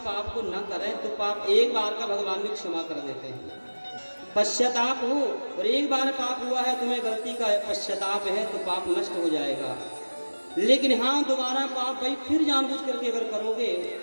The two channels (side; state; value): both; inverted; correlation -1.00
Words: पाप को न करें तो पाप एक बार का भगवान भी क्षमा कर देते हैं। पश्चाताप हो और एक बार पाप हुआ है, तुम्हें गलती का पश्चाताप है तो पाप नष्ट हो जाएगा। लेकिन हाँ, दोबारा पाप भाई फिर जानबूझ करके अगर करोगे